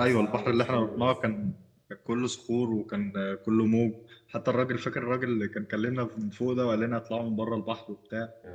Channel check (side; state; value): both; identical; correlation 1.00